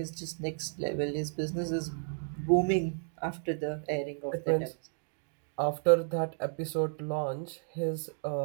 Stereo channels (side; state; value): left; silent; digital silence